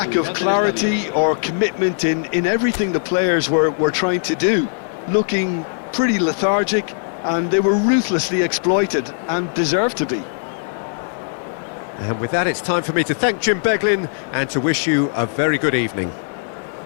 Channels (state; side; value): silent; right; 66 dB below the other